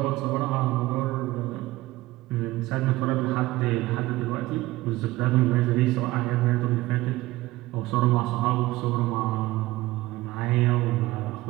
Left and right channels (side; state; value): left; quieter; 18.3 dB